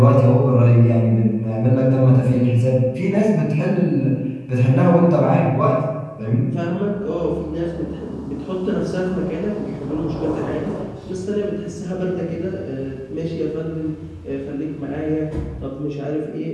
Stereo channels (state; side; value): identical; both; correlation 1.00